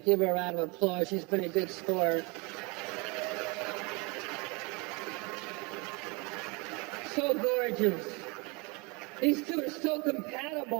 Give her a round of applause. She's been a good sport. So gorgeous. These two are so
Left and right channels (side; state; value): left; quieter; 28.7 dB